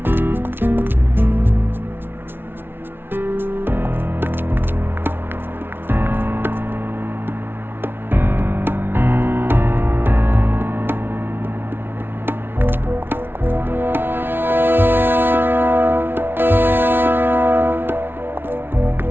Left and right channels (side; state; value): left; late; 0.11 ms